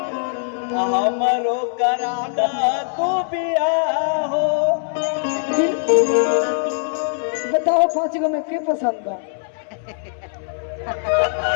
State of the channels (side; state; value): right; silent; 65 dB below the other